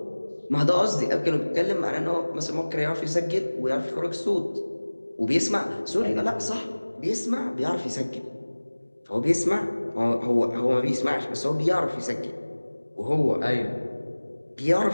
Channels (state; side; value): inverted; both; correlation -1.00